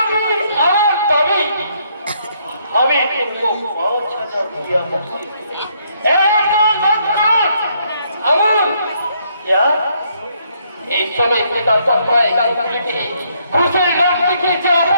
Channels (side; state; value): both; inverted; correlation -0.71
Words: আমার দাবি हमें तुमको 5,000 रुपया मुझसे আমন क्या এই শ্রমিক নেতার তৎপরায় গাছগুলিকে ঘুষের লোক দেখিয়ে যে